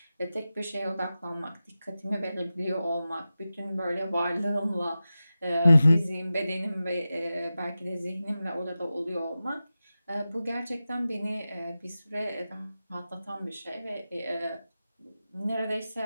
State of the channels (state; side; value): inverted; both; correlation -0.94